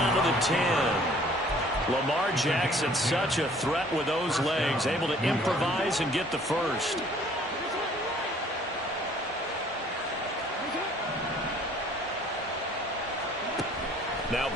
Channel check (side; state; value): both; normal; correlation 0.56